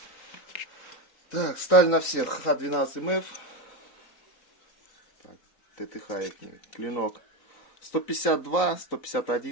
Так, сталь на всех Х12МФ. Так, ТТХ клинок 152,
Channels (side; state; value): right; late; 4.0 ms